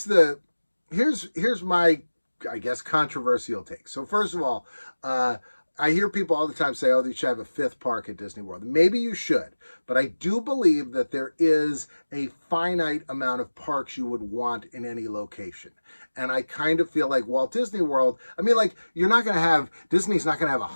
my, I guess, controversial take. So first of all, I hear people all the time say, oh, they should have a fifth park at Disney World. Maybe you should, but I do believe that there is a finite amount of parks you would want in any location. And I kind of feel like Walt Disney World, I mean, like, you're not going to have, Disney's not going to have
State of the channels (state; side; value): inverted; both; correlation -1.00